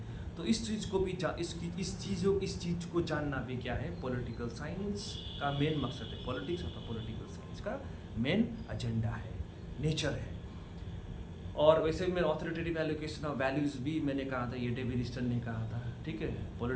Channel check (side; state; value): both; identical; correlation 1.00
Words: तो इस चीज़ को भी इस चीज़ को जानना भी क्या है, पॉलिटिकल साइंस का मेन मकसद है। पॉलिटिक्स और पॉलिटिकल साइंस का मेन एजेंडा है, नेचर है। और वैसे भी मैं ऑथोरिटेटिव एलोकेशन ऑफ वैल्यूज़ भी मैंने कहा था, ये डेविड ईस्टन ने कहा था, ठीक है।